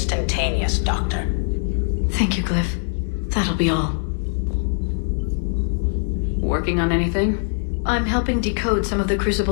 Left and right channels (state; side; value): silent; right; 64 dB below the other